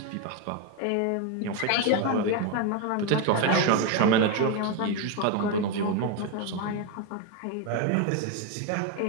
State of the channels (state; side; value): different; both; correlation 0.02